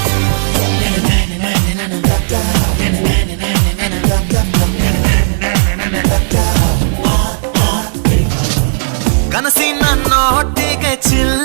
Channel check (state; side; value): silent; left; digital silence